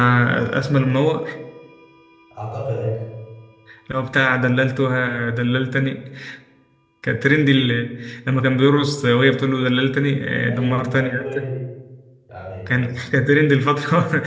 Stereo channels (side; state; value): both; identical; correlation 1.00